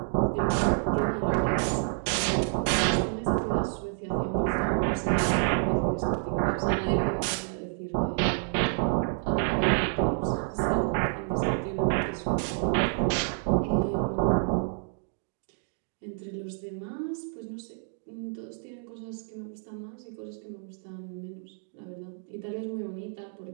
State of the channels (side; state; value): left; silent; 59 dB below the other